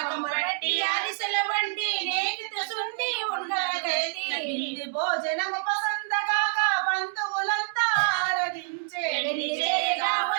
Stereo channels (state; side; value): silent; left; digital silence